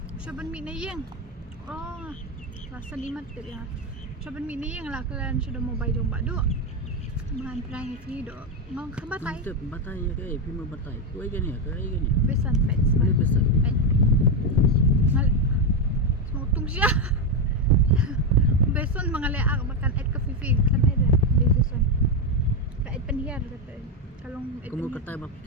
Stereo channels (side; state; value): both; normal; correlation 0.08